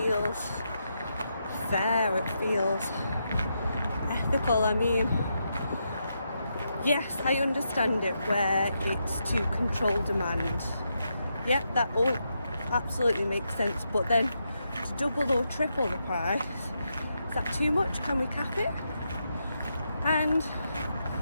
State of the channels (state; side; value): inverted; both; correlation -0.83